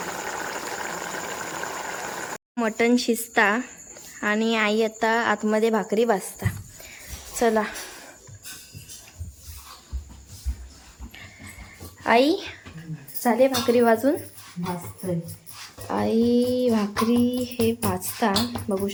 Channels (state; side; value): identical; both; correlation 1.00